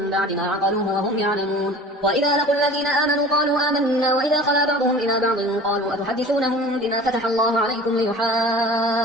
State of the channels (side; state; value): both; normal; correlation 0.42